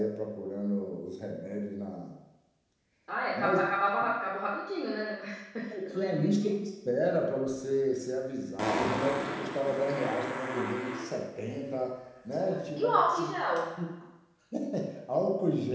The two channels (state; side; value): identical; both; correlation 1.00